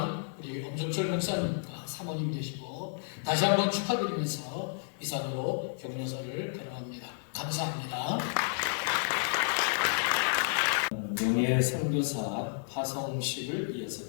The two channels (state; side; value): silent; right; digital silence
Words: 우리 엄정철 목사님과 사모님 되시고 다시 한번 축하드리면서 이상으로 격려사를 발언합니다. 감사합니다. 명예 선교사 파송식을